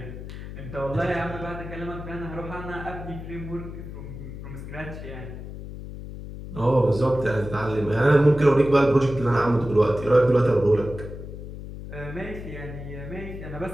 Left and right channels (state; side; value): noise; left; hum, 10 dB below the sound